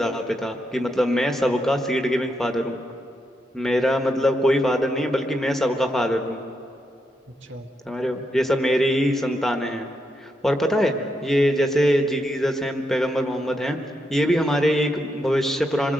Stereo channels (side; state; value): both; normal; correlation 0.82